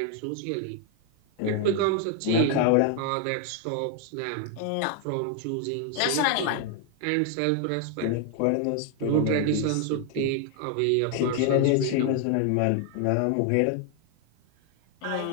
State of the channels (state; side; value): different; both; correlation 0.00